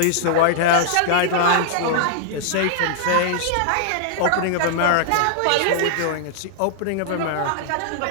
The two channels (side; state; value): both; different; correlation -0.01